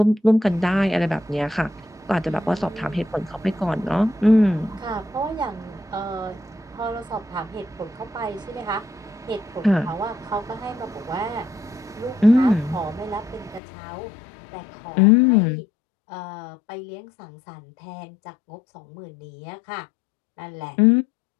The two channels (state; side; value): drops out; right; at 13.6 s